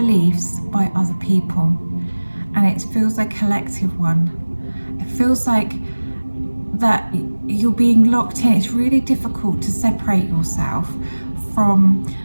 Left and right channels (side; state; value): both; inverted; correlation -1.00